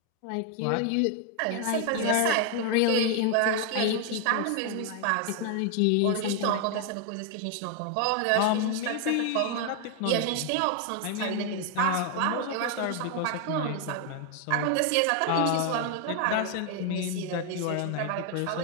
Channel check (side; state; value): both; different; correlation 0.01